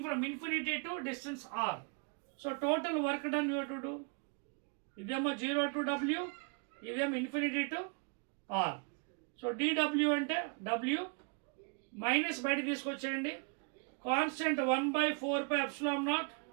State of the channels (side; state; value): left; quieter; 37.1 dB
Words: from infinity to distance r. So total work done you to do. ఇదేమో 0 to w, ఇదేమో ఇన్ఫినిటీ టు ఆర్. సో dw అంటే w మైనస్ బయట తీసుకొచ్చేయండి. కాన్స్టెంట్ 1/4πε0.